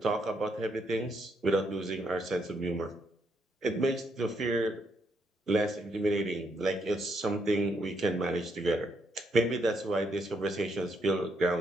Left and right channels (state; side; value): normal; both; correlation 0.76